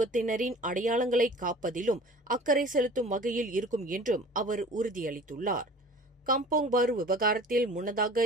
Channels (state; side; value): normal; both; correlation 0.45